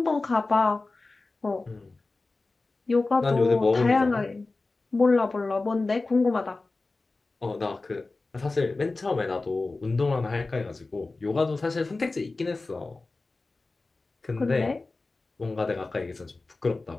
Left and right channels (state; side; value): quieter; right; 3.5 dB